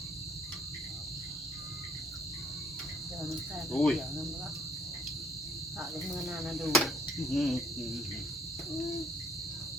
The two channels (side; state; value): both; normal; correlation 0.63